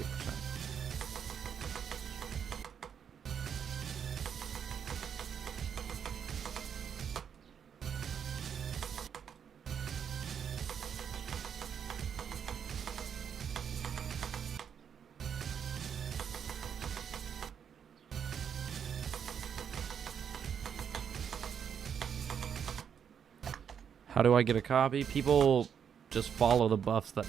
How do I get a copy? People just follow the buffs that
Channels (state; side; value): quieter; left; 7.8 dB